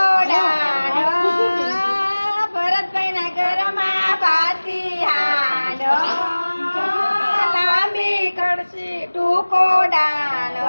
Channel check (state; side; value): inverted; both; correlation -1.00